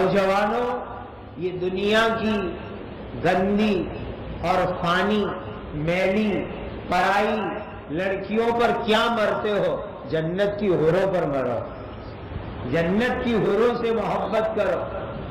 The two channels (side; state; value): both; identical; correlation 1.00